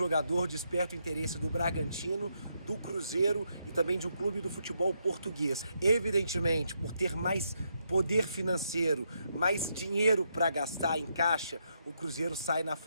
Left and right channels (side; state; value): both; inverted; correlation -0.79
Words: desperta o interesse do Bragantino, do Cruzeiro e também de um clube do futebol português. Evidentemente, por ter mais poder financeiro, mais dinheiro para gastar em caixa, o Cruzeiro sai na